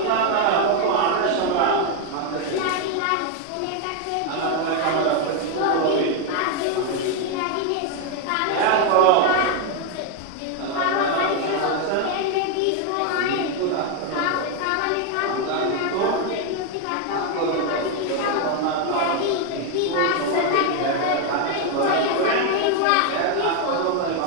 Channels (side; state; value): both; different; correlation 0.01